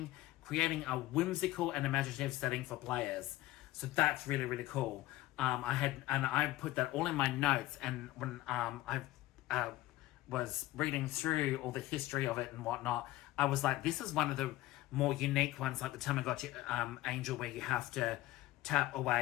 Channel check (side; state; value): right; quieter; 16.6 dB